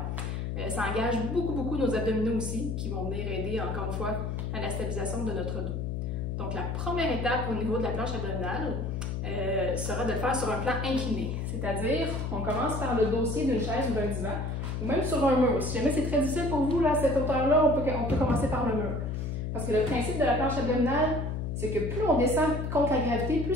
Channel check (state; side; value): noise; left; hum, 3 dB below the sound